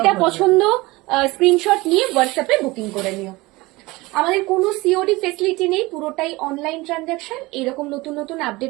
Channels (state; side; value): quieter; left; 21.7 dB